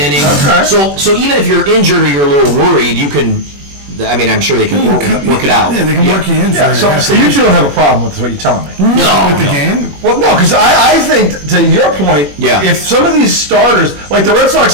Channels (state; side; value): late; left; 21 ms